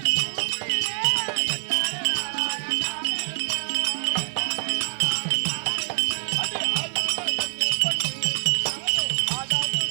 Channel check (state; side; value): silent; left; 62 dB below the other